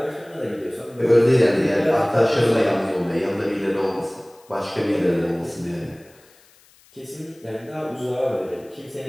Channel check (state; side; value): noise; left; hiss, 29 dB below the sound